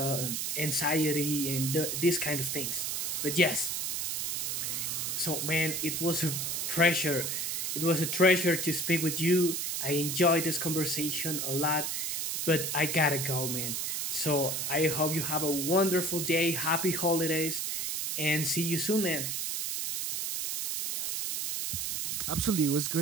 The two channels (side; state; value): right; noise; hiss, 1 dB below the sound